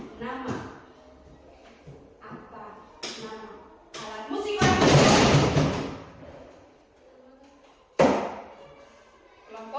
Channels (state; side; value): identical; both; correlation 1.00